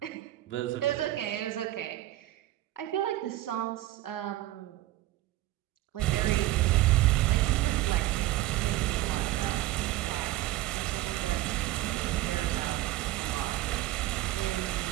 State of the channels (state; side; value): quieter; left; 15.9 dB